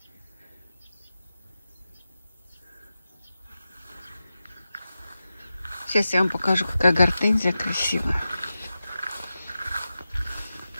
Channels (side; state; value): both; inverted; correlation -0.93